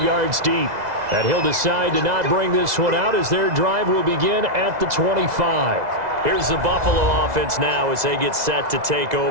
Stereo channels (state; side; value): late; left; 2.0 ms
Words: deep. And he'll decide to not bring this one out as their drive will begin at the 25. Here's the Buffalo offense now as they get set to take